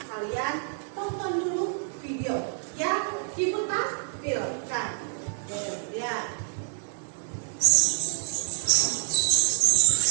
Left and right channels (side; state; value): left; silent; 58 dB below the other